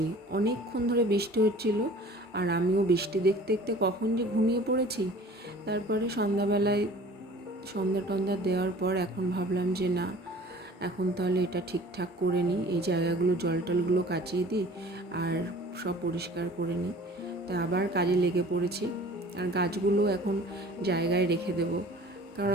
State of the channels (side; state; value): both; normal; correlation 0.47